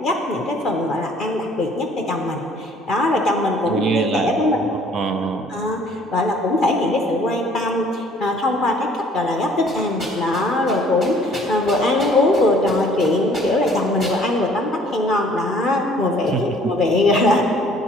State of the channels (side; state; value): both; normal; correlation 0.57